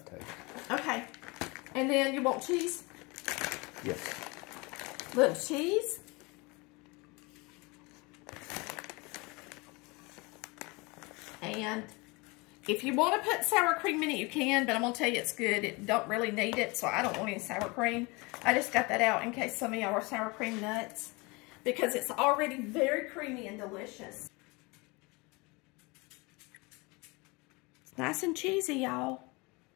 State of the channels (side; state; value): right; quieter; 26.3 dB